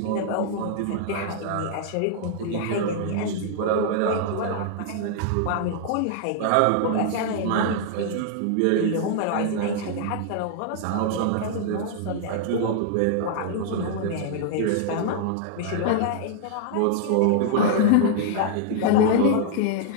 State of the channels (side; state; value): both; different; correlation -0.01